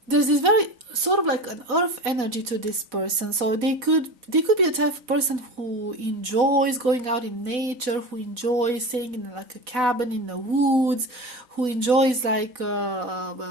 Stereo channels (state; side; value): late; left; 4.1 ms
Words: there's this very sort of like an earth energy to this person. So they could be a type of person who enjoys going out in nature, who enjoys staying in like a cabin in the woods, who enjoys like